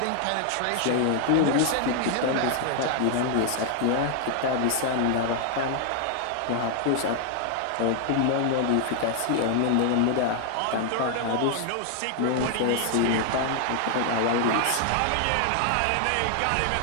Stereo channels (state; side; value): different; both; correlation 0.00